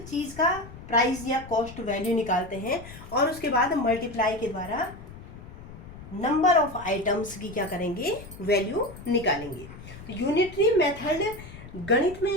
चीज का प्राइस या कॉस्ट वैल्यू निकालते हैं और उसके बाद मल्टीप्लाई के द्वारा नंबर ऑफ आइटम्स की क्या करेंगे, वैल्यू निकालेंगे। तो यूनिटरी मेथड गणित में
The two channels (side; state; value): left; noise; rumble, 15 dB below the sound